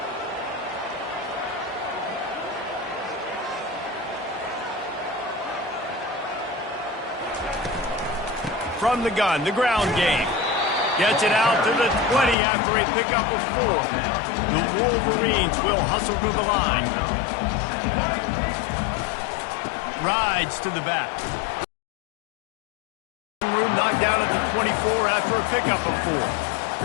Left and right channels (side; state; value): right; drops out; at 12.4 s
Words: From the gun, the ground game. Gets it out to the 20 after a pickup of 4. The Wolverines will hustle to the line. Rides to the back. Room knocked down at the 24 after a pickup of